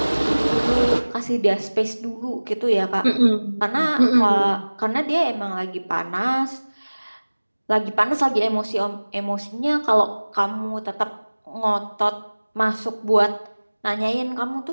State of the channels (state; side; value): inverted; both; correlation -1.00